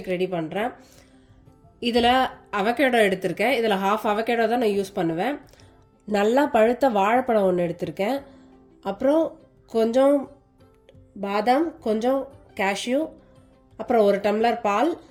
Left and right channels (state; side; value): identical; both; correlation 1.00